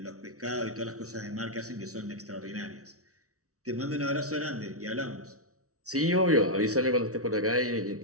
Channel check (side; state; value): left; late; 0.65 ms